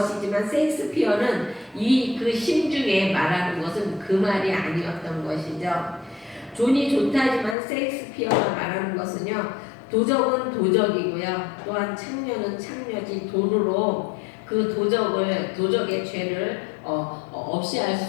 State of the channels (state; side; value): drops out; right; at 7.6 s